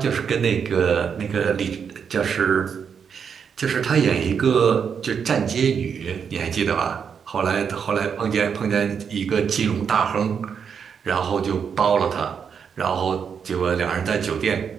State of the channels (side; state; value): left; quieter; 6.9 dB